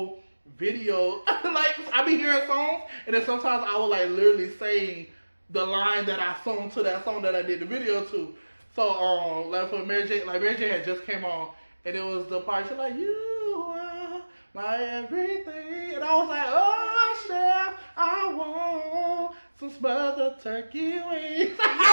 video. Like, I be hearing songs, and then sometimes I will like literally sing the line that I sung to that song that I did the video to. So like for Mary J, had just came on. And it was the part, she's like, you are my everything. And I was like, oh, chef, I want some smothered turkey wings.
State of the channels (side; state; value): both; inverted; correlation -1.00